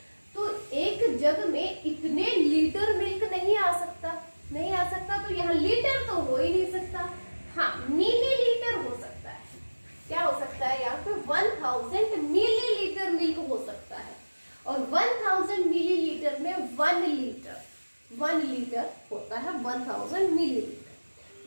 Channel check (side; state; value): both; inverted; correlation -1.00